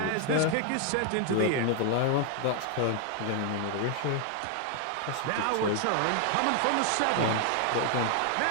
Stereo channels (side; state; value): both; different; correlation 0.00